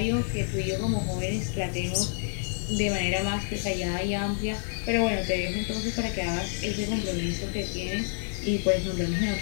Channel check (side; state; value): right; silent; 59 dB below the other